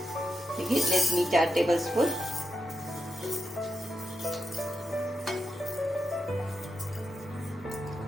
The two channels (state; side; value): normal; both; correlation 0.87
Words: ते घेतलेत मी 4 टेबलस्पून.